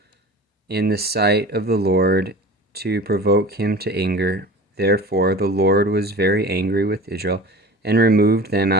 in the sight of the Lord, to provoke him to anger. Therefore the Lord was very angry with Israel, and removed them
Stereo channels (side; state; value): both; normal; correlation 0.37